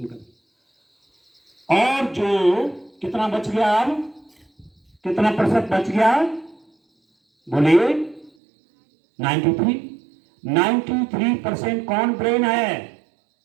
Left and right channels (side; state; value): left; drops out; at 8.3 s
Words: और जो कितना बच गया, अब कितना प्रतिशत बच गया? बोलिए 93। 93% कौन ब्रेन है?